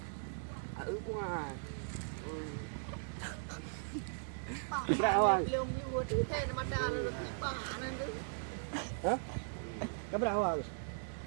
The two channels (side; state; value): left; silent; digital silence